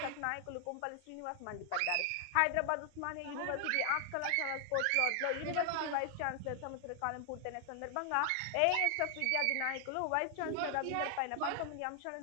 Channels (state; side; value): different; both; correlation 0.00